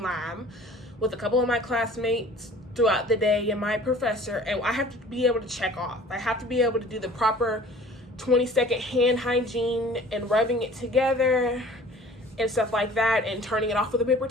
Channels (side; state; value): both; normal; correlation 0.48